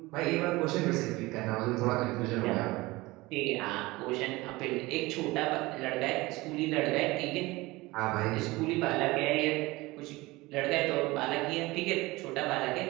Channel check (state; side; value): quieter; left; 21.1 dB